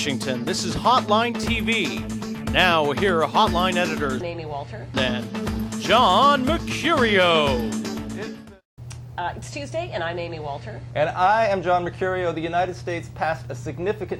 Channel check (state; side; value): identical; both; correlation 1.00